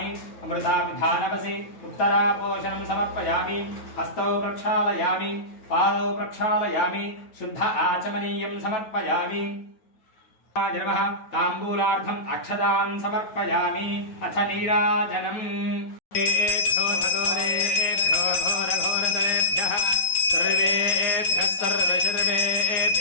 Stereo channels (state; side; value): late; right; 9.3 ms